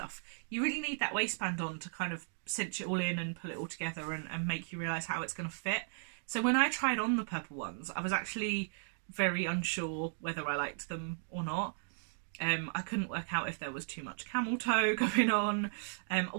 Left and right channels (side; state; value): left; silent; digital silence